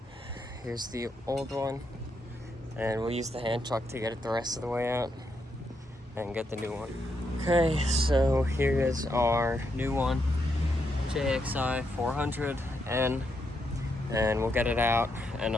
Here's the old one, and we'll use the hand truck to get it the rest of the way out and get the new one. Okay, so here is our new one, JXI400N, and we'll get it out and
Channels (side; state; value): both; normal; correlation 0.80